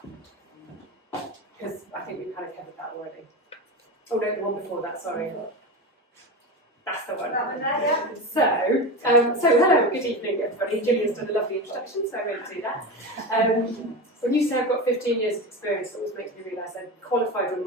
because I think we've kind of covered that already. Oh no, the one before that, sorry. That's the one. So hello, good evening everybody. Gillian's done a lovely introduction, so I won't do that. When you say I've got 15 years of experience, it always makes me realise I qualified when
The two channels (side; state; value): both; normal; correlation 0.23